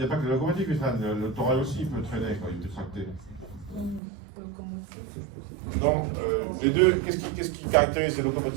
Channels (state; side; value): drops out; left; at 4.0 s